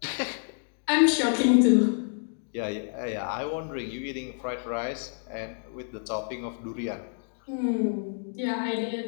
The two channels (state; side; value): silent; right; digital silence